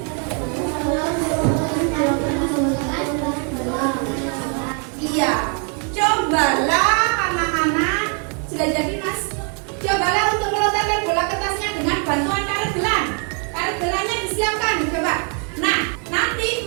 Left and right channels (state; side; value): quieter; left; 40.0 dB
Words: iya, cobalah anak-anak. Sudah jadi Mas. Cobalah untuk melontarkan bola kertasnya dengan bantuan karet gelang. Karet gelangnya disiapkan, coba. Nah, nanti